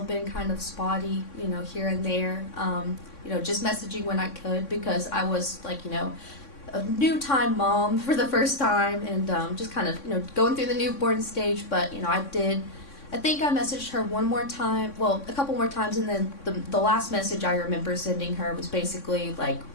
been kind of spotty, here and there. Just messaging when I could because I was like, a new time mom for the first time and just kind of, going through the newborn stage. But, I think I messaged her one more time, well, a couple more times. And then the last message I remember sending her was basically like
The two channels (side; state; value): right; late; 3.6 ms